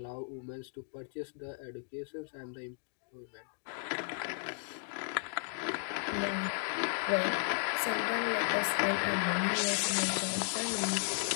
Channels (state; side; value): silent; right; digital silence